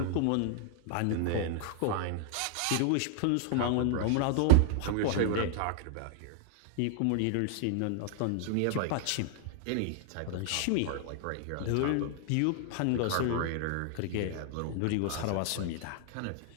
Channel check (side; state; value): both; different; correlation -0.01